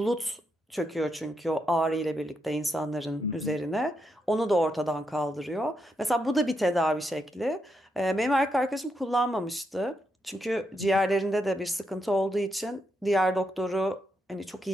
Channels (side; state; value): both; normal; correlation 0.81